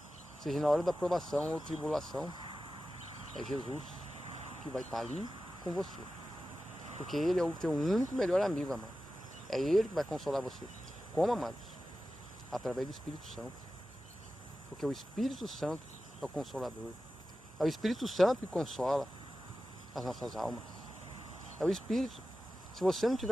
seja na hora da provação ou tribulação, é Jesus que vai estar ali com você. Porque Ele é o teu único melhor amigo, amado. É Ele que vai consolar você. Como, amados? Através do Espírito Santo. Porque o Espírito Santo é o Consolador. É o Espírito Santo que consola as nossas almas. É o Espírito. Se você não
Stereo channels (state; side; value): normal; both; correlation 0.94